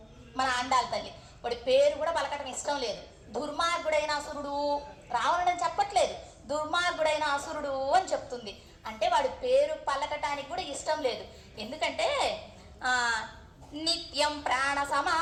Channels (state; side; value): identical; both; correlation 1.00